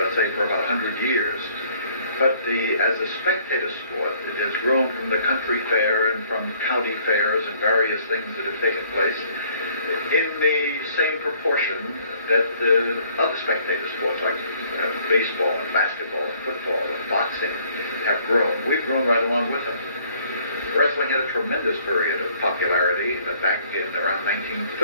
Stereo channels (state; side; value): inverted; both; correlation -0.60